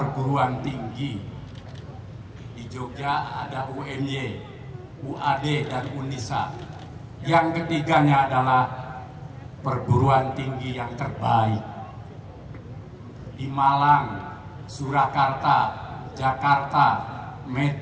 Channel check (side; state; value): both; identical; correlation 1.00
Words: tinggi. Di Jogja ada UMY, UAD, dan UNISA. Yang ketiganya adalah perguruan tinggi yang terbaik. Di Malang, Surakarta, Jakarta,